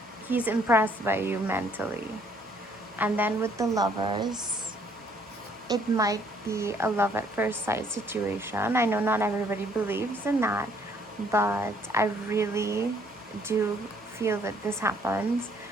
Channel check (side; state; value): both; normal; correlation 0.64